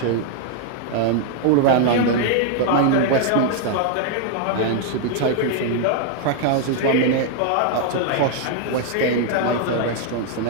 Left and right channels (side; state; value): both; different; correlation 0.00